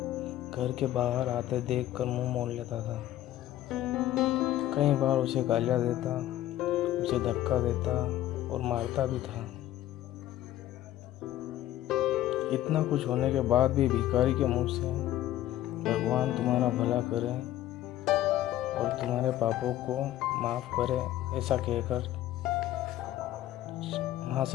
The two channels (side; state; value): right; quieter; 13.6 dB